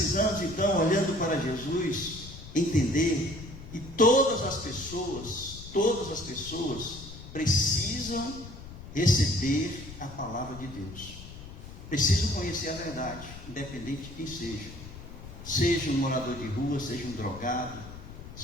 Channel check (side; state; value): left; noise; rumble, 14 dB below the sound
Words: então, olhando para Jesus, entender que todas as pessoas precisam receber a palavra de Deus. Precisam conhecer a verdade, independente de quem seja. Seja um morador de rua, seja um drogado,